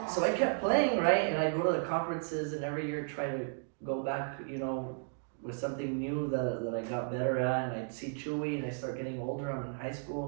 So I kept playing, right? And I go to the conferences, and every year try to go back, you know, with something new that I got better at. And I'd see Chewy, and I start getting older. I'm in high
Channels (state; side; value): silent; left; digital silence